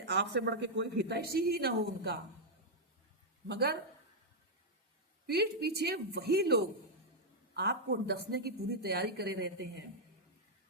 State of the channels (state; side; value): normal; both; correlation -0.04